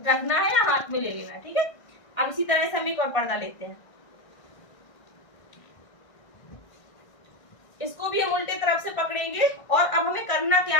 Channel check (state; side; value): late; right; 1.6 ms